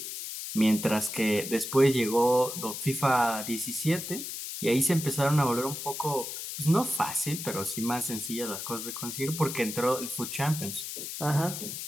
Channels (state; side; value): noise; left; hiss, 7 dB below the sound